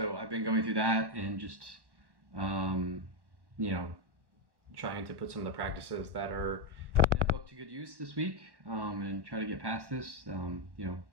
I've been going through that and just, trying to put some of the practices that are in that book to good use this week, and try to get past this.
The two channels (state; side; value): late; left; 1.1 ms